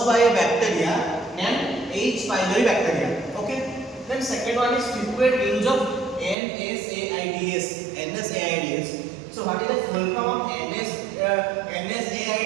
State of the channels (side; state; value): left; drops out; at 6.4 s